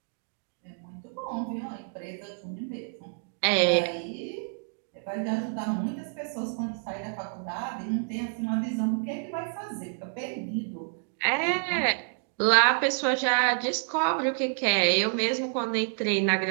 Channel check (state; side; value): silent; left; 59 dB below the other